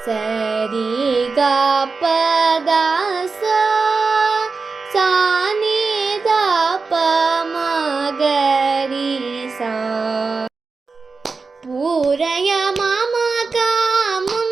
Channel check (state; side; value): quieter; left; 4.4 dB